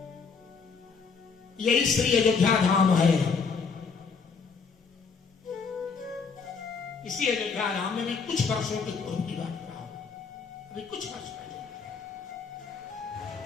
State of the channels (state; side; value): quieter; right; 5.3 dB